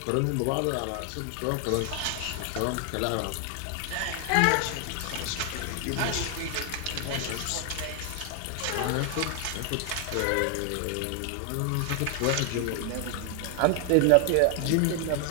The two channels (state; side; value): different; both; correlation 0.00